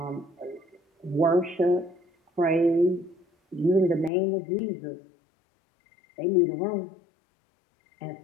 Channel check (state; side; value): drops out; right; at 4.1 s